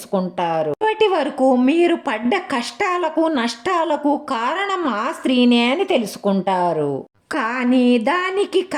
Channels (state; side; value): identical; both; correlation 1.00